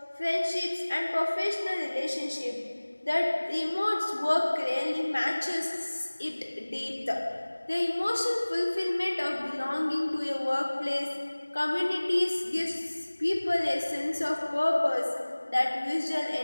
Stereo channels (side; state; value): both; inverted; correlation -1.00